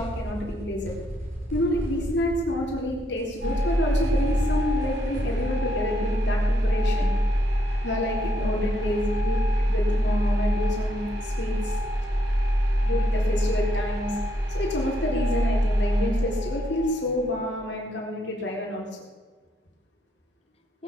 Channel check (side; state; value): both; normal; correlation 0.75